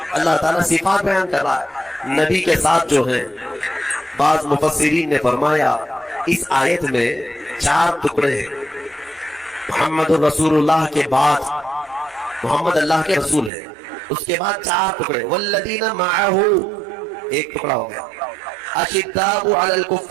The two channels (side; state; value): left; drops out; at 13.5 s